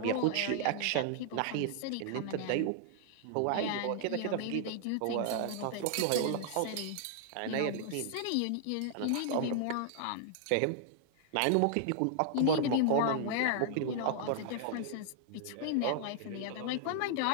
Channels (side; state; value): both; different; correlation -0.01